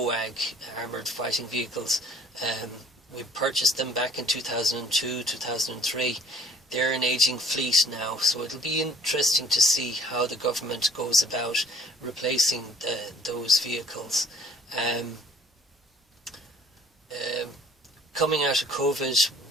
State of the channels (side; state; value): both; normal; correlation 0.55